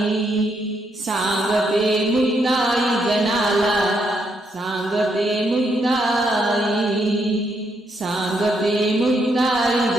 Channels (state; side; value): normal; both; correlation 0.77